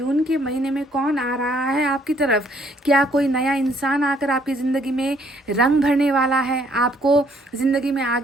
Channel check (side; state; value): both; normal; correlation 0.66